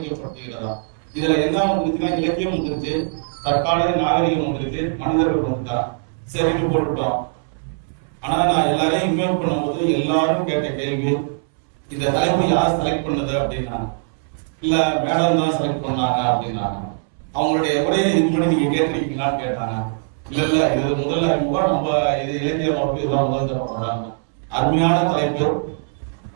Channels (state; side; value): silent; left; 65 dB below the other